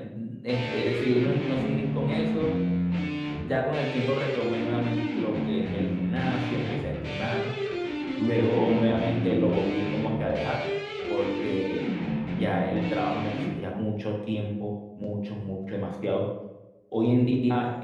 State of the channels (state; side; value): identical; both; correlation 1.00